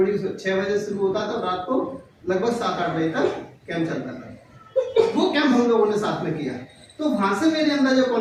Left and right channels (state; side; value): identical; both; correlation 1.00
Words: 6 बजे शुरू होता था, रात को लगभग 7-8 बजे तक कैंप चलता था। वो कैंप हम लोगों ने साथ में किया, तो वहां से मेरे अंदर जो